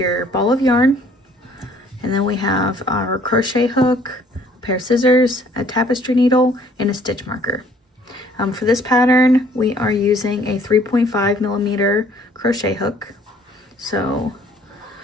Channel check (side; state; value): both; normal; correlation 0.59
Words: ball of yarn, and then we have our crochet hook, a pair of scissors, a tapestry needle, and a stitch marker. For this pattern, we are using a 3.5 millimeter crochet hook. So